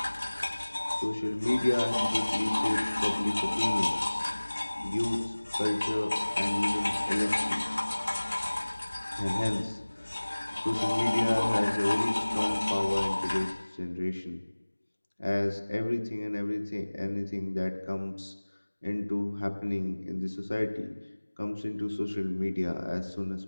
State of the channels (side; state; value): both; inverted; correlation -1.00